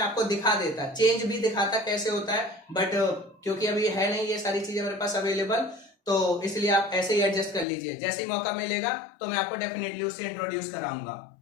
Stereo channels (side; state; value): right; drops out; at 7.7 s